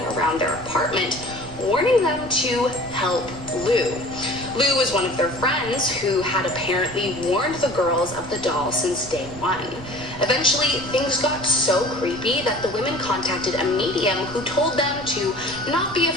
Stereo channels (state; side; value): noise; right; rumble, 15 dB below the sound